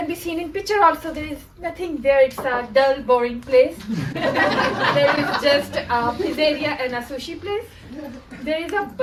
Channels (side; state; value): both; identical; correlation 1.00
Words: be seen in picture also, there is nothing there. It's a dull, boring place. There is just a pizzeria and a sushi place. There is a